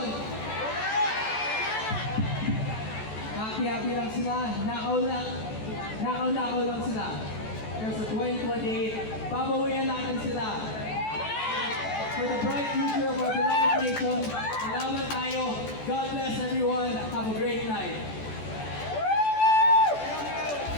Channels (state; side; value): late; right; 14 ms